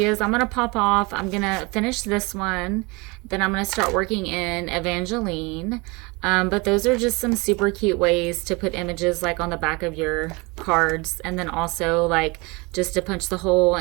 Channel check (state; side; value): quieter; left; 26.7 dB